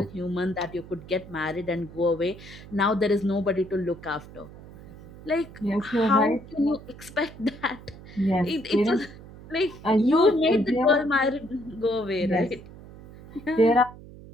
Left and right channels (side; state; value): right; noise; hum, 17 dB below the sound